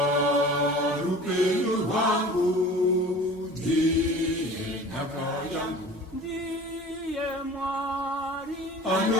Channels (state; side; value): normal; both; correlation 0.42